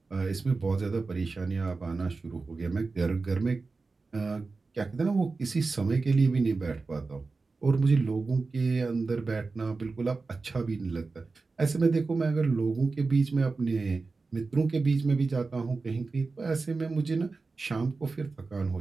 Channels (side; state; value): left; quieter; 4.0 dB